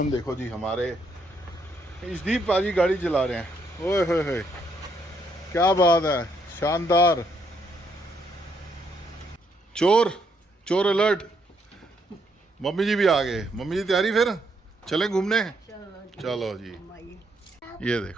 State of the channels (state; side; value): normal; both; correlation 0.73